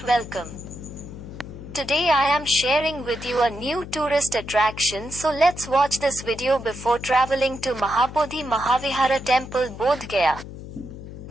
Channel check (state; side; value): noise; left; hum, 12 dB below the sound